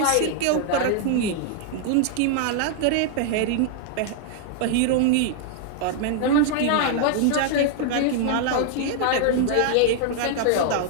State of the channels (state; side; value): different; both; correlation 0.00